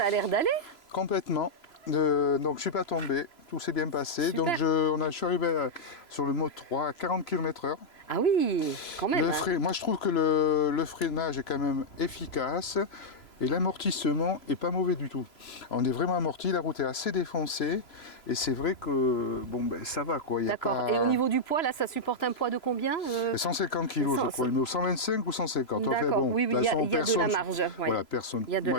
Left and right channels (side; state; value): right; late; 3.0 ms